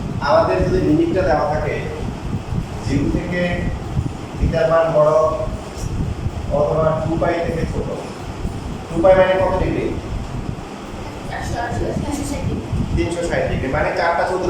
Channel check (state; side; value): identical; both; correlation 1.00